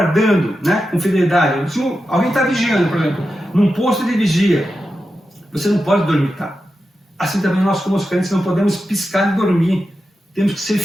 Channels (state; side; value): normal; both; correlation 0.90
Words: né, com fidelidade. Se alguém está vigiando, por exemplo, num posto de vigia, você não pode dormitar. Assim também nós, como os crentes, não podemos piscar e dormir. Temos que ser